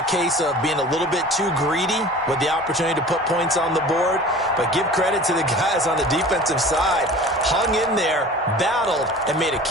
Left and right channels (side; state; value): both; normal; correlation 0.41